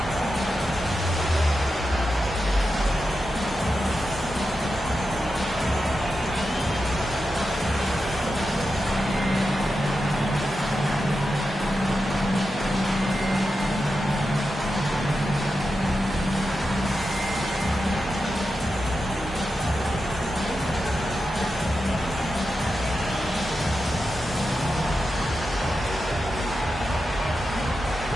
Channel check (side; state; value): both; normal; correlation 0.89